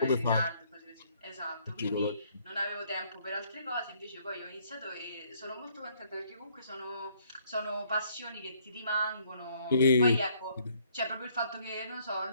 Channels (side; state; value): both; inverted; correlation -0.65